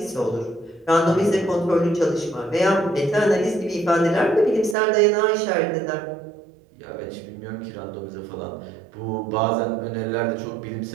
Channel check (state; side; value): drops out; left; at 4.8 s